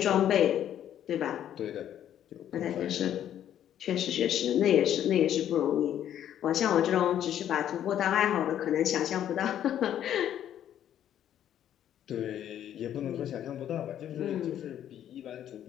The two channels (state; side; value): quieter; right; 10.6 dB